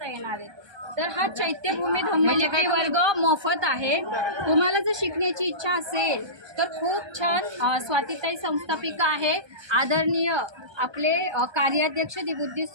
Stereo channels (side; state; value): left; late; 1.2 ms